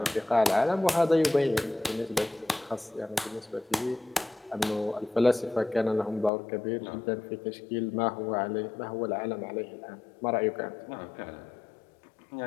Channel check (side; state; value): right; drops out; at 6.3 s